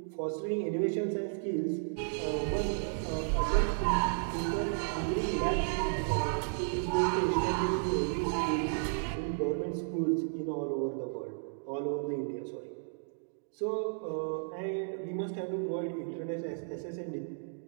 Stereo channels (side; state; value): left; silent; digital silence